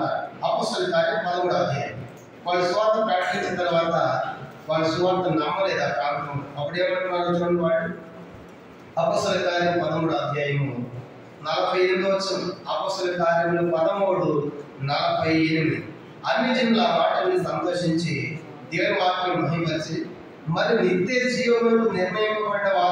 అపోస్తల కార్యం 13వ అధ్యాయం. వాళ్ళు సువార్త ప్రకటించిన తర్వాత వాళ్ళు సువార్త నమ్మలేదు ఆ ప్రాంతం. అప్పుడు ఏమంటున్నారు చూడండి వాళ్ళు. అపోస్తల కార్యం 13వ అధ్యాయము 48వ వచనం. అపోస్తల కార్యములు 13:48. అన్ని జనులు ఆ మాటల్ని సంతోషించి దేవుని వాక్యం మహిమపరిచి మరి నిత్య జీవములకు నిర్ణయింపబడ్డ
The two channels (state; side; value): identical; both; correlation 1.00